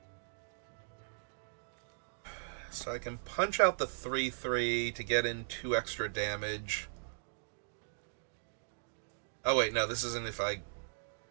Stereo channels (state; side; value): silent; left; digital silence